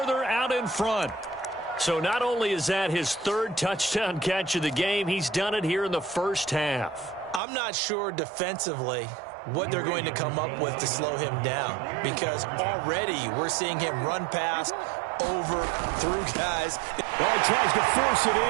out in front. So not only is that his 3rd touchdown catch of the game, he's done it here in the first half. I'm not sure defensively what they're going to come up with to slow him down, because already we're seeing him run past, over, through guys. Oh, he tries to force it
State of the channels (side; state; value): left; drops out; at 7.4 s